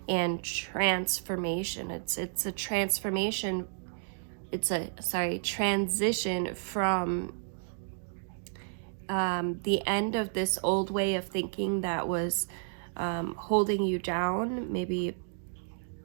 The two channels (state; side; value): silent; left; digital silence